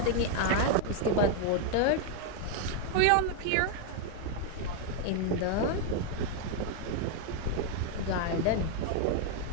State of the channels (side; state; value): both; different; correlation 0.01